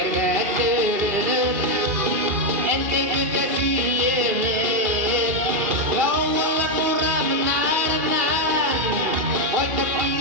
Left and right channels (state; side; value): late; left; 2.5 ms